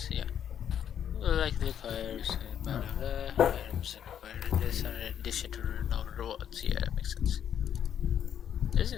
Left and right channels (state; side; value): quieter; right; 9.3 dB